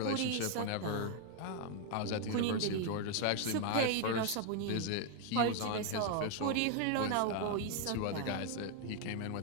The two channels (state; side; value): different; both; correlation 0.00